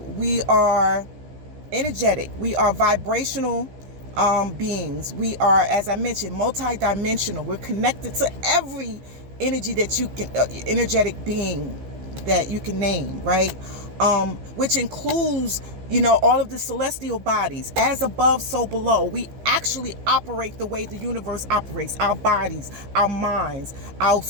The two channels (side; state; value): left; late; 15 ms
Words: are energetic. We are vibrational beings. We are, as I mentioned, multidimensional. We're connected to every energy that you can, energetic being that you can name, right? Which includes, all of the celestial bodies. As above, so below. We actually operate the way the universe operates. Our bodies, our minds, our